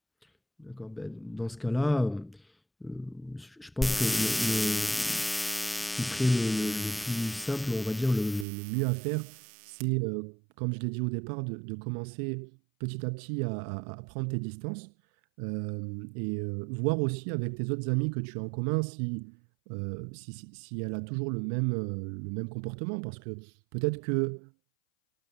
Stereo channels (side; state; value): left; drops out; at 8.5 s